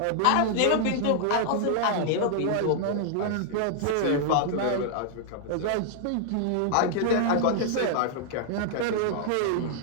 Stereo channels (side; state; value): both; different; correlation -0.01